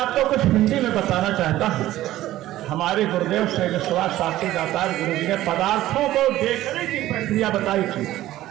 कुछ हिंदी में बताना चाहता हूँ। हमारे गुरुदेव श्री विश्वास शास्त्री दातार गुरु जी ने पदार्थों को देखने की प्रक्रिया बताई थी,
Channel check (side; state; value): left; quieter; 14.8 dB